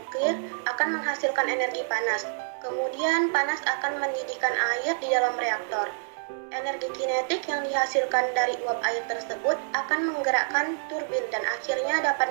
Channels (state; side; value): silent; left; digital silence